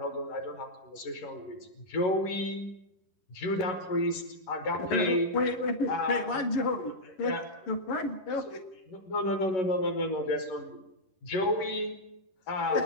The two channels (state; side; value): late; right; 11 ms